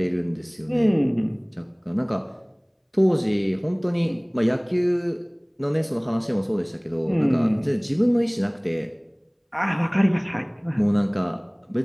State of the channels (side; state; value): both; identical; correlation 1.00